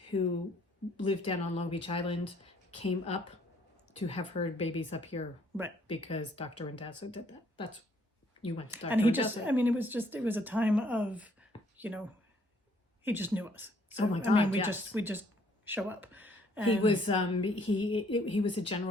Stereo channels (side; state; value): both; normal; correlation 0.64